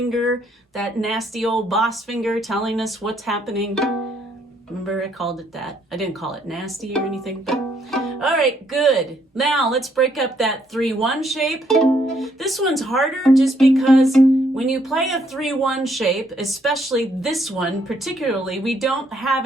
that nasty old boss finger telling us what's happening. Remember I called it that. I didn't call it nasty or anything, but all right, good. Now let's break up that 3-1 shape. This one's harder just because when you play a 3-1 shape, especially this one particularly, we don't have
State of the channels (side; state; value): both; normal; correlation 0.70